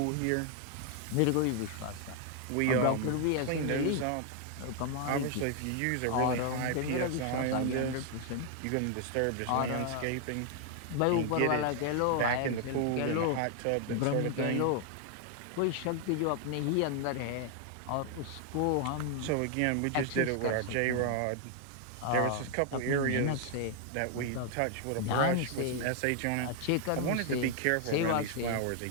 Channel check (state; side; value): different; both; correlation 0.00